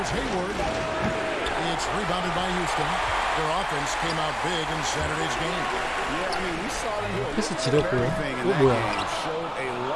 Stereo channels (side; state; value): both; identical; correlation 1.00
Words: Hayward. It's rebounded by Houston. Their offense came out big in Saturday's game. Yeah, I mean, we saw them do 패스 지렸고요. everything in 이거 that 뭐야? game. Showed a